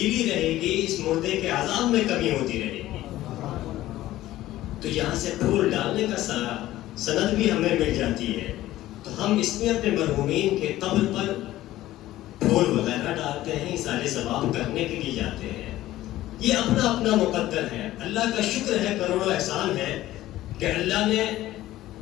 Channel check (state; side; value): quieter; right; 15.2 dB